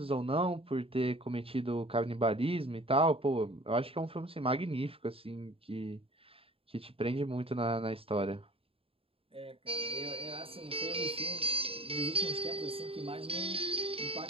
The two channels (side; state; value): left; late; 0.27 ms